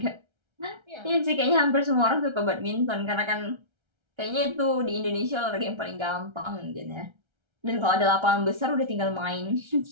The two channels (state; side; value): late; left; 1.3 ms